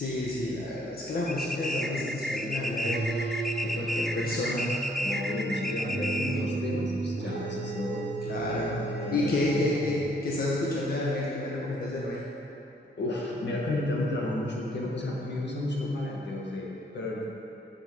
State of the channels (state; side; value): normal; both; correlation 0.65